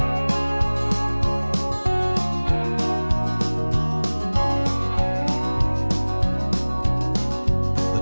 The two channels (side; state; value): both; inverted; correlation -1.00